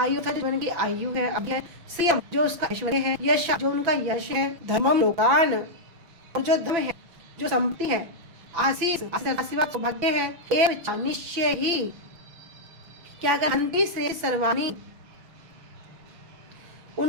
था जीवन की आयु है, अब है सीएम जो उसका ऐश्वर्य है, यश जो उनका यश है, धर्मम लोकान और जो धर्म है, जो संपत्ति है, आशीष सौभाग्य है, एवं निश्चय ही क्या कर, हन्ति श्रेय सर्वाणि,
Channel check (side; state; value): left; late; 5.9 ms